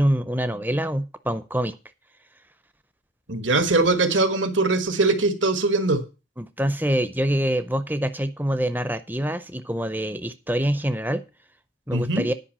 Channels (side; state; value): both; normal; correlation 0.48